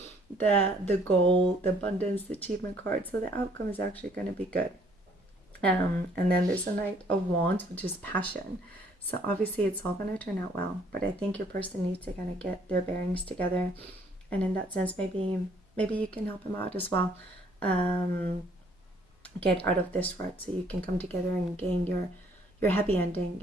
goal, the abundance, the achievement card. So the outcome is actually going to be good. And then there's the Knight of Wands, which is passion. So obviously it's all going to turn out well, but I think your person needs to kind of get their bearings together, and in that sense maybe you can help them out as well, get out of this rut, so you can come together and gain your happy ending,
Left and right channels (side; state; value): both; normal; correlation 0.62